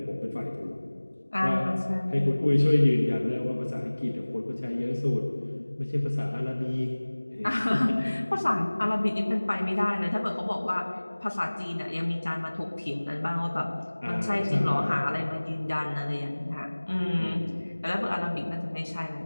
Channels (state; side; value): inverted; both; correlation -1.00